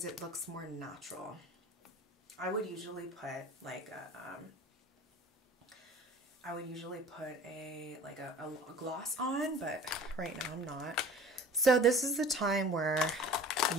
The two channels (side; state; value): both; normal; correlation 0.44